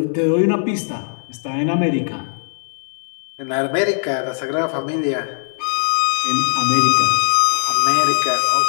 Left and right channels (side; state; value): right; silent; 66 dB below the other